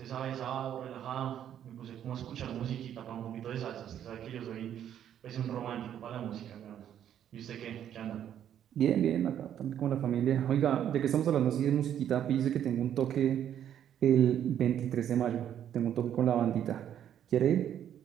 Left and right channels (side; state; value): left; quieter; 10.1 dB